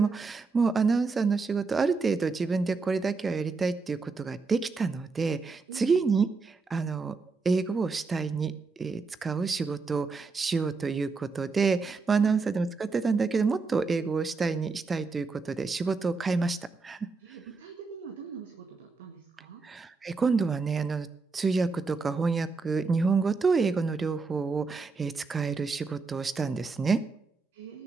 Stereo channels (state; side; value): quieter; left; 4.4 dB